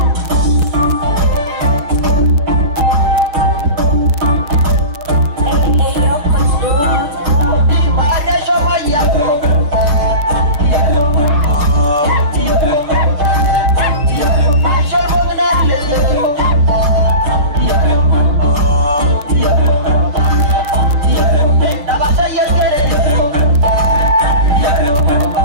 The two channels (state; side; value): late; left; 6.6 ms